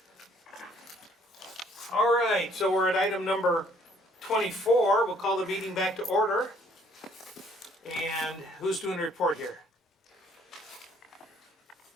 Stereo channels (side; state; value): both; normal; correlation 0.62